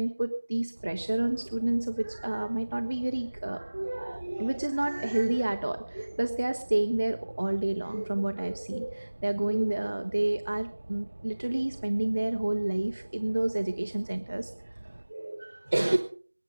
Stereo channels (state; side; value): inverted; both; correlation -1.00